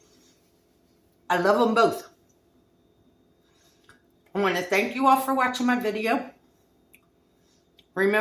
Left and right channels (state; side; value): identical; both; correlation 1.00